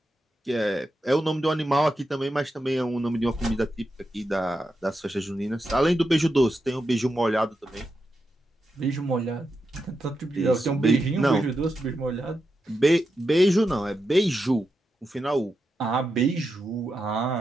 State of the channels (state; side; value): normal; both; correlation 0.87